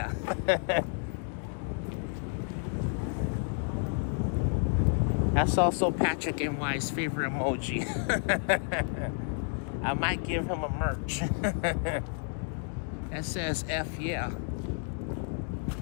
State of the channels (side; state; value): right; silent; 57 dB below the other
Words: That's also Patrick NY's favorite emoji. I might give him a merch that says F yeah.